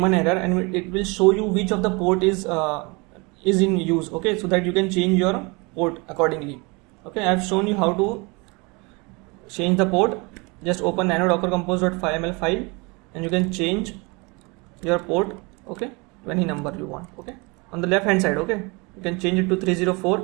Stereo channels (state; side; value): quieter; left; 28.0 dB